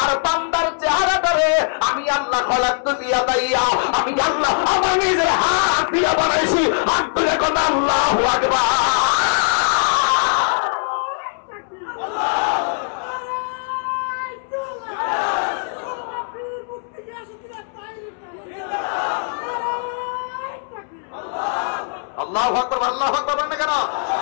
আর বান্দার চেহারাটারে আমি আল্লাহ খলাকতু দিয়া দাইয়া, আমি আল্লাহ আমার নিজের হাত দিয়া বানাইছি। হাত তুলে কোন আল্লাহু আকবার। আল্লাহু আকবার, আল্লাহু আকবার বলেন কেন?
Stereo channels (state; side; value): silent; right; 65 dB below the other